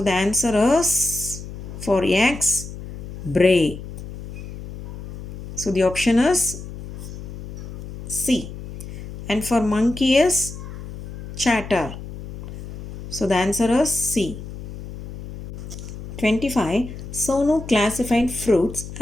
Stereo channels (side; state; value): left; noise; hum, 11 dB below the sound